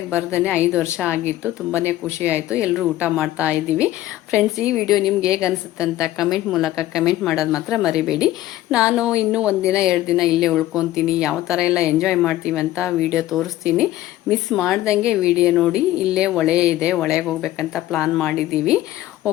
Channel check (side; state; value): right; quieter; 14.9 dB